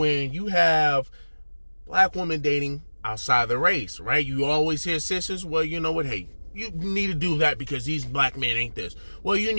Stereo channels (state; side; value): inverted; both; correlation -1.00